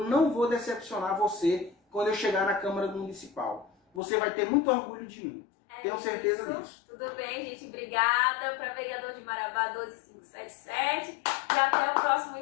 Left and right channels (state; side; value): drops out; right; at 4.0 s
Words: não vou decepcionar você quando eu chegar na Câmara Municipal. Você vai ter muito orgulho de mim. Tenho certeza disso. Tudo bem, gente. Obrigada. Para vereador de Marabá 12577. E até o próximo